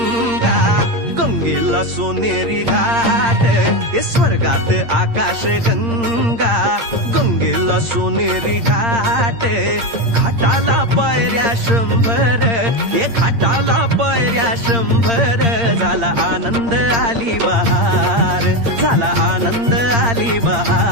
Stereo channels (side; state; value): left; late; 8.7 ms